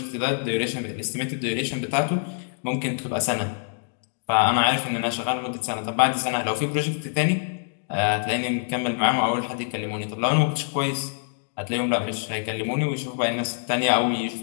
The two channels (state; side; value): silent; right; digital silence